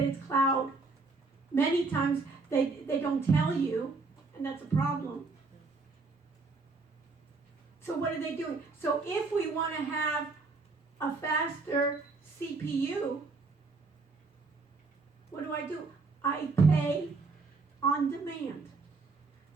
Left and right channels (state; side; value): quieter; left; 4.0 dB